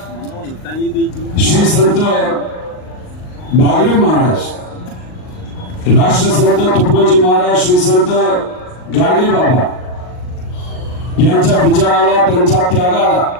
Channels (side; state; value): right; late; 39 ms